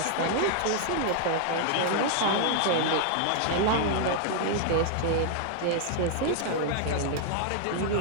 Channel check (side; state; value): both; different; correlation 0.00